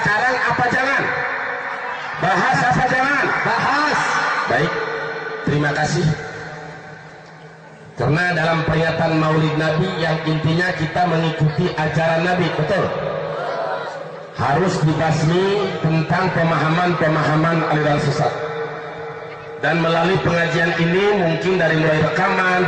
apa jangan? Bahas apa jangan? Bahas. Baik, terima kasih. Karena dalam peringatan Maulid Nabi yang intinya kita mengikuti ajaran Nabi, betul? Harus dibasmi tentang pemahaman-pemahaman aliran sesat. Dan melalui pengajian ini, mungkin dari mulai rekaman,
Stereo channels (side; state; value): both; identical; correlation 1.00